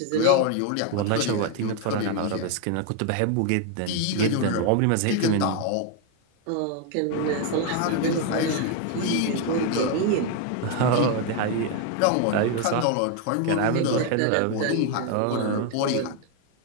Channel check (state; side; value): different; both; correlation 0.01